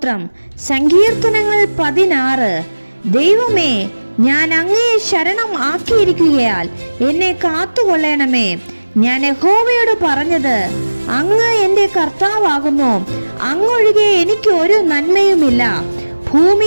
സങ്കീർത്തനങ്ങൾ 16. ദൈവമേ, ഞാൻ അങ്ങയെ ശരണം ആക്കിയിരിക്കുകയാൽ എന്നെ കാത്തുകൊള്ളണമേ. ഞാൻ യഹോവയോട് പറഞ്ഞത്, അങ്ങ് എൻ്റെ കർത്താവാകുന്നു, അങ്ങൊഴികെ എനിക്ക് ഒരു നന്മയുമില്ല.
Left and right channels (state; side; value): inverted; both; correlation -1.00